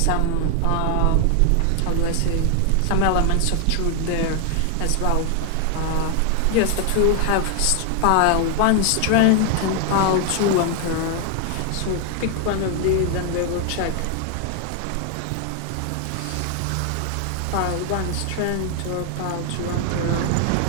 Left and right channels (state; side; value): different; both; correlation 0.00